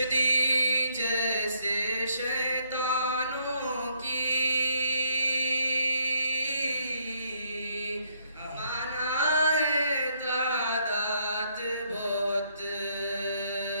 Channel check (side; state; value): both; inverted; correlation -0.70